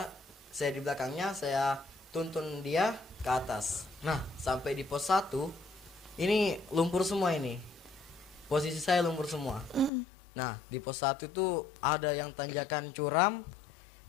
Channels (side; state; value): right; drops out; at 9.9 s